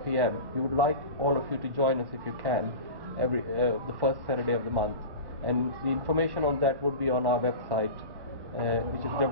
p.m. We would like all of you to join us if you can, the first Saturday of the month, and the information on that would be on our website, which is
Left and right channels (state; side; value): late; left; 1.1 ms